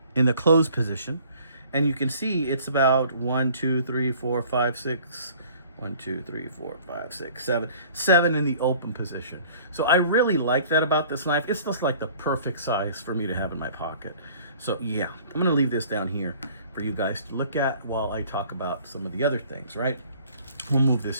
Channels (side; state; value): both; inverted; correlation -0.53